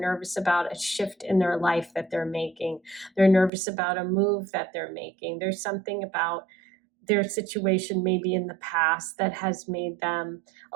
about a shift in their life that they're making. They're nervous about a move that they're making. There's something about their situation maybe in the past that has made them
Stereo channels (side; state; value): left; drops out; at 3.5 s